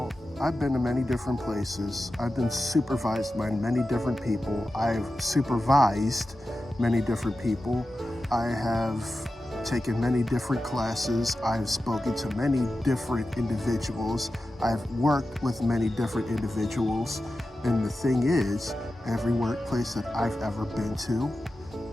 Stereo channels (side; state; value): both; normal; correlation 0.93